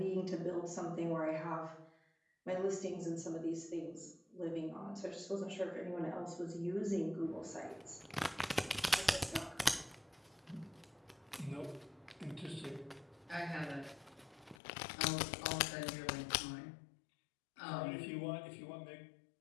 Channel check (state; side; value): drops out; right; at 14.6 s